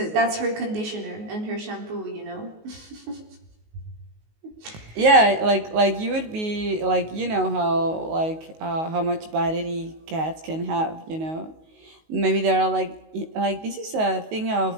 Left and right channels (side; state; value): left; late; 19 ms